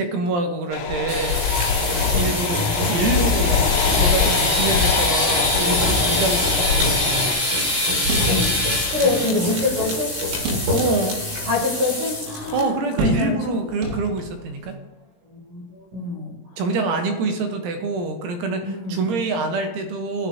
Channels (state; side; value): late; left; 17 ms